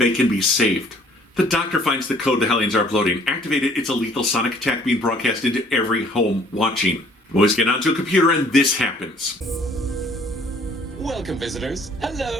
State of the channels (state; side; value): normal; both; correlation 0.58